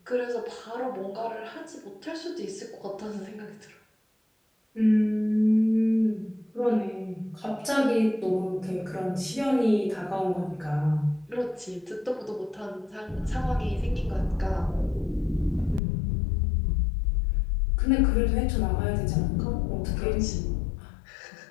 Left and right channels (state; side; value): drops out; right; at 15.8 s